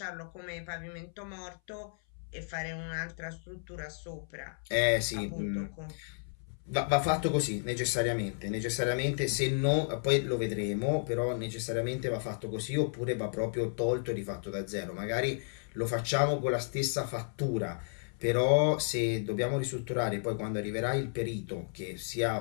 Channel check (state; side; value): silent; right; 56 dB below the other